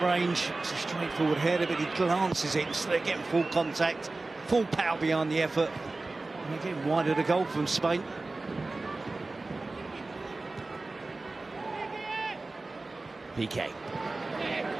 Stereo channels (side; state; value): left; quieter; 3.3 dB